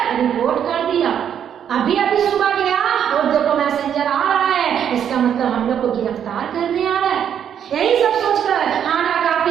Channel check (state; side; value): quieter; left; 8.9 dB